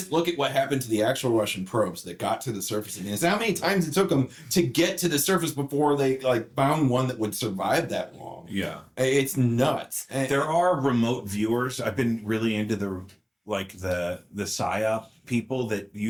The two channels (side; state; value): both; identical; correlation 1.00